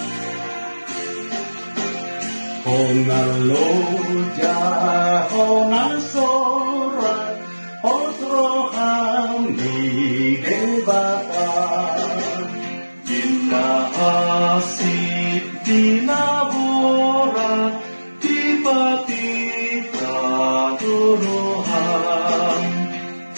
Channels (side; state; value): both; inverted; correlation -1.00